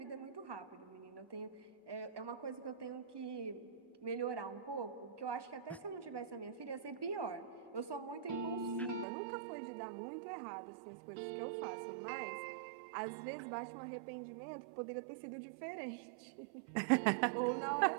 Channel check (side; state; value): left; drops out; at 9.1 s